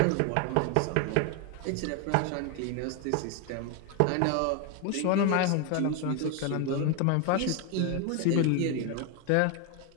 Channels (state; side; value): different; both; correlation 0.01